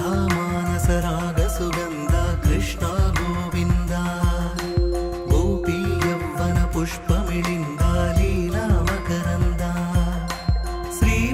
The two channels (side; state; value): both; identical; correlation 1.00